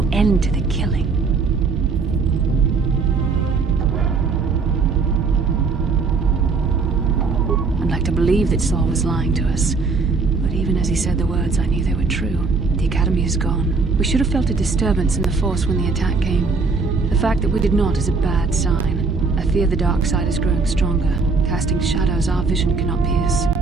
end to the killing? I'd like to believe that Saul was lying to us. But even as he said the words, I knew they were true. The Academy is gone. We should have felt a disturbance in the Force when the attack came. The fact that we did not is a bad sign. I fear the dark side is growing stronger, casting shadows our vision cannot pierce.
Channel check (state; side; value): quieter; left; 4.4 dB